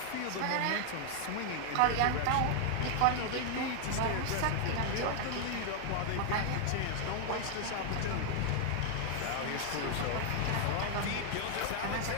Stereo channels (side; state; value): both; different; correlation 0.00